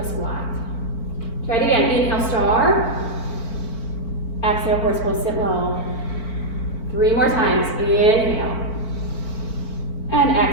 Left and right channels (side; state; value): right; late; 4.5 ms